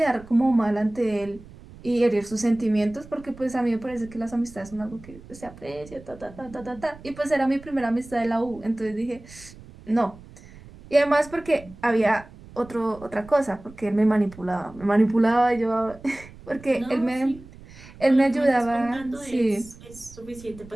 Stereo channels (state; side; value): noise; right; rumble, 19 dB below the sound